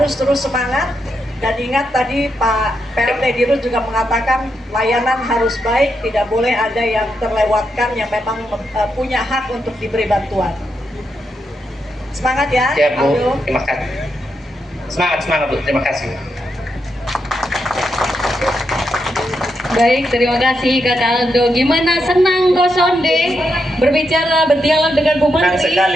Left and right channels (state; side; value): normal; both; correlation 0.83